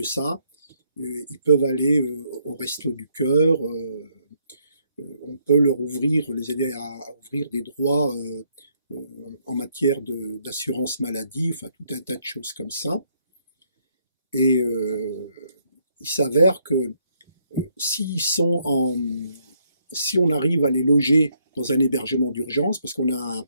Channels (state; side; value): inverted; both; correlation -0.72